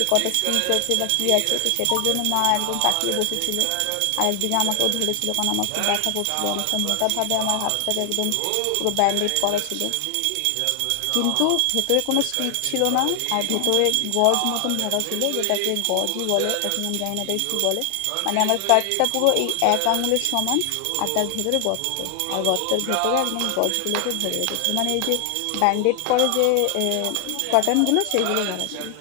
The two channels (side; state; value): both; different; correlation 0.00